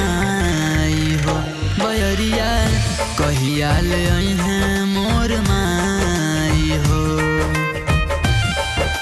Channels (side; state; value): both; identical; correlation 1.00